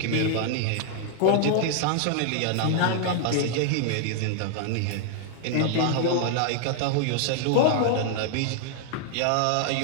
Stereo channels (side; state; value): both; different; correlation 0.00